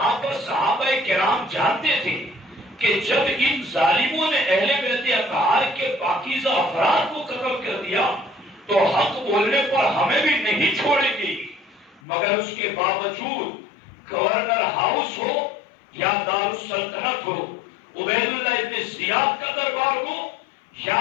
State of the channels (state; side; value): drops out; right; at 12.0 s